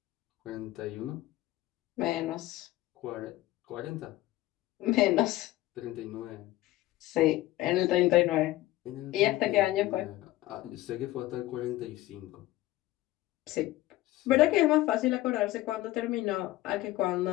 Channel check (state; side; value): quieter; right; 16.7 dB